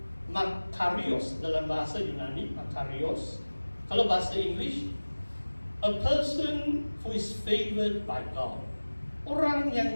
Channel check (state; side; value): inverted; both; correlation -1.00